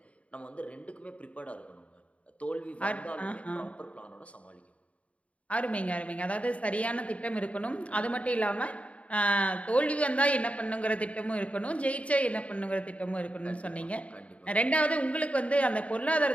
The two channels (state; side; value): late; right; 0.065 ms